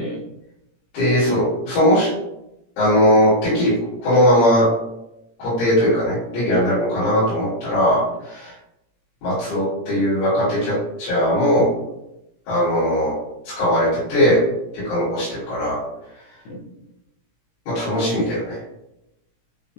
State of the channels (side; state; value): right; late; 17 ms